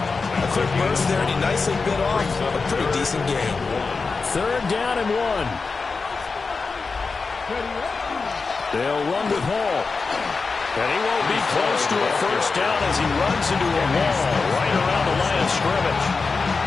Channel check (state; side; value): quieter; right; 4.4 dB